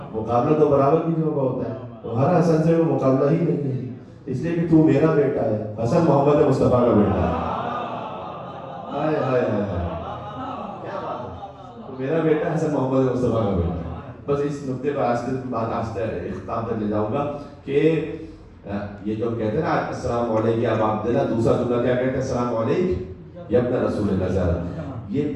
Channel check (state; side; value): identical; both; correlation 1.00